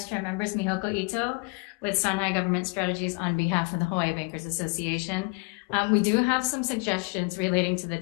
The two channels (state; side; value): quieter; right; 31.0 dB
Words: Chair, members, Mihoko Ito with Sanhai Government Strategies on behalf of the Hawaii Bankers Association. We do have some suggestions relating to the